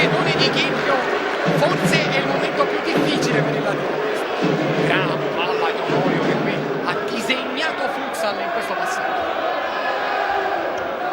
di Chinchio, forse è il momento più difficile per il Latino. Gran palla di Onorio che qui ha disegnato Futsal in questo passaggio.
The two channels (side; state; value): both; identical; correlation 1.00